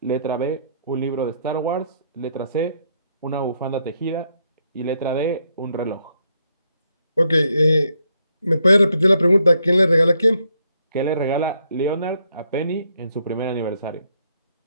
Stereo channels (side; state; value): both; inverted; correlation -0.75